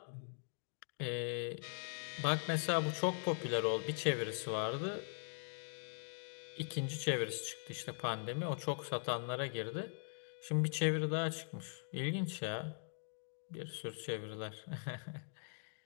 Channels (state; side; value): silent; right; digital silence